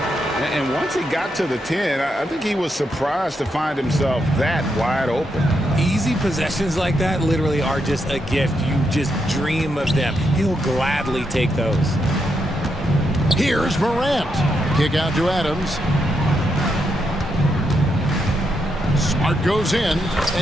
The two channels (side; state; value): both; normal; correlation 0.81